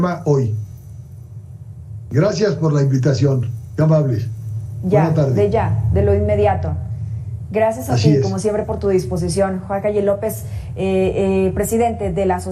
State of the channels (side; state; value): both; identical; correlation 1.00